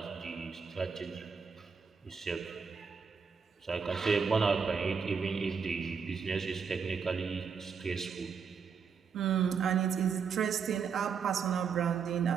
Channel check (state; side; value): quieter; left; 6.1 dB